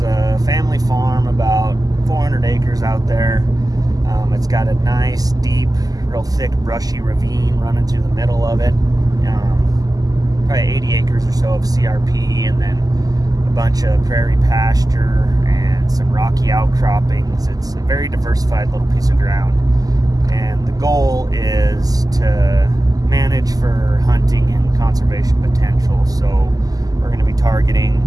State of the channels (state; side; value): late; left; 0.17 ms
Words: a family farm, about 400 acres out there. It's got a nice, deep, real thick, brushy ravine running through the middle of it. Probably 80 acres or so of CRP, and then a bunch of prairie pasture and some rocky outcroppings. It's a very diversified little piece of ground, and the goal is to manage for hunting and conservation potential. So we're going to be